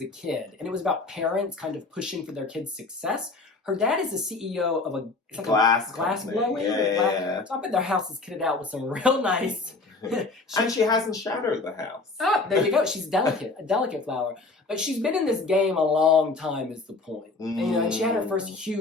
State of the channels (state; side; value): quieter; right; 3.6 dB